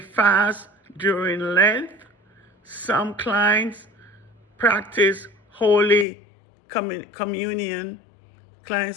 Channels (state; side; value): drops out; right; at 6.1 s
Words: during Lent. Some clients practice Holy Communion.